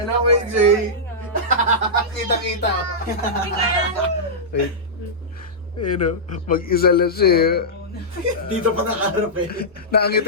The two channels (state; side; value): normal; both; correlation -0.12